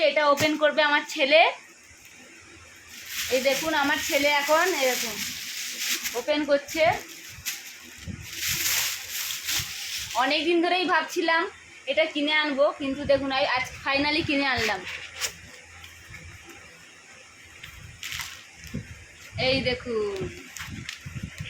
এটা ওপেন করবে আমার ছেলে। এই দেখুন আমার ছেলে এখন এরকম ওপেন করছে। অনেক দিন ধরেই ভাবছিলাম এটা কিনে আনবো, কিন্তু দেখুন আজ ফাইনালি কিনে আনলাম। এই দেখুন,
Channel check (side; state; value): both; identical; correlation 1.00